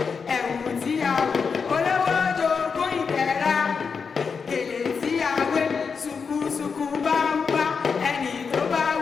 ẹ̀wù tí a wọ̀ olówó jogún ìdẹ̀ra, gèlè tí a wé ṣùkùṣùkù bá ń bá ẹni tó bá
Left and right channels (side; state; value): right; quieter; 5.6 dB